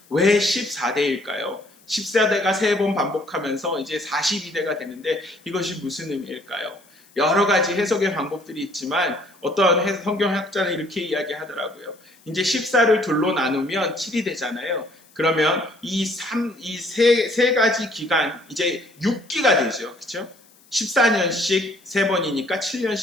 왜 14대일까요? 14대가 3번 반복하면서 이제 42대가 되는데 이것이 무슨 의미일까요? 여러 가지 해석의 방법들이 있지만 어떤 성경학자는 이렇게 이야기하더라고요. 이제 14를 둘로 나누면 7이 되잖아요. 그러면 이 세 가지 기간, 이제 6기가 되죠. 그렇죠? 14년씩 3번이니까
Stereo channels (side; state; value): left; noise; hiss, 29 dB below the sound